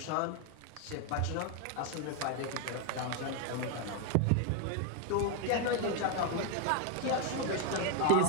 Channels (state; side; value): different; both; correlation 0.01